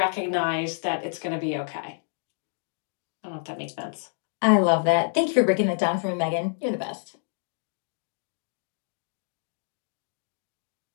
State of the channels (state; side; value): silent; right; 59 dB below the other